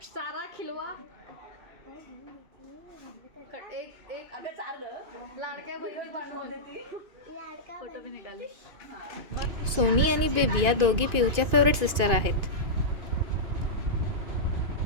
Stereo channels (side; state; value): left; late; 2.5 ms